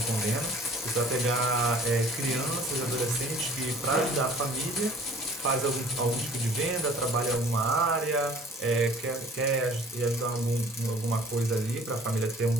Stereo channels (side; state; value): both; normal; correlation 0.51